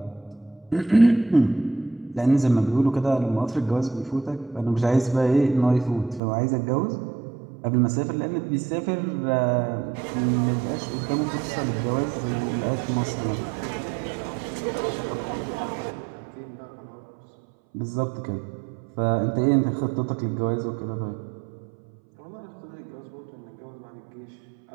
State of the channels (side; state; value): left; drops out; at 6.2 s